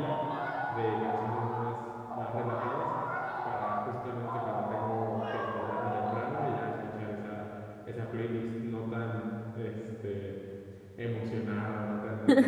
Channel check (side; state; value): both; identical; correlation 1.00